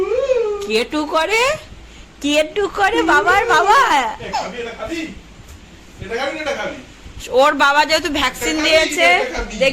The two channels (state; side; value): identical; both; correlation 1.00